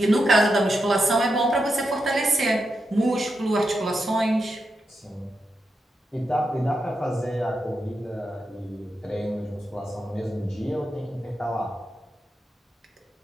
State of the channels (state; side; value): normal; both; correlation 0.86